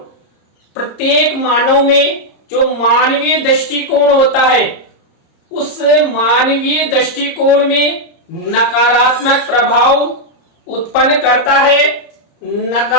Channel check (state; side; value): late; right; 30 ms